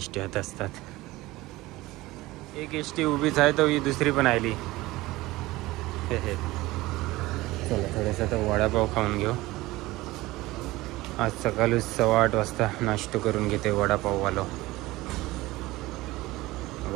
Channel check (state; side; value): quieter; left; 19.0 dB